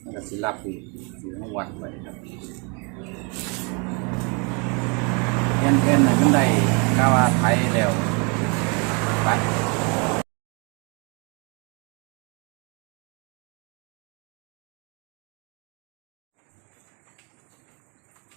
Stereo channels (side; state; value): left; quieter; 33.5 dB